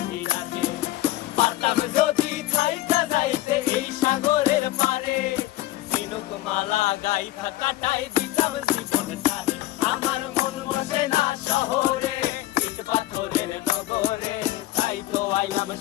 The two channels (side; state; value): right; quieter; 16.3 dB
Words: রাখে। পারতাম যদি থাইকা যাইতে এই সাগরের পারে, ঝিনুক মালা গাইথা কাটাই দিতাম জীবনটারে। আমার মন বসে না শহরে, ইট পাথরের নগরে, তাই তো আইলাম